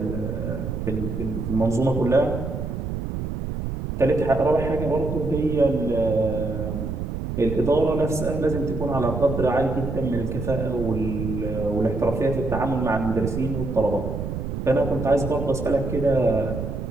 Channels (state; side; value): noise; right; rumble, 4 dB below the sound